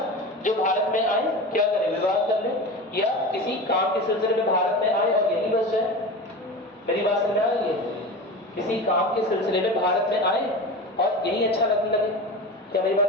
जो भारत में आए, क्या करें, विवाह कर लें, या किसी काम के सिलसिले में भारत में आए और यहीं बस जाए। मेरी बात समझ में आ रही है? किसी काम के सिलसिले में भारत में आए और यही अच्छा लगने लगे। क्या मेरी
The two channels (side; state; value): both; normal; correlation 0.29